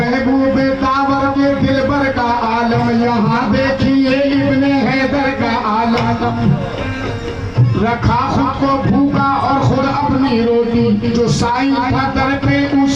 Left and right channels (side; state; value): both; identical; correlation 1.00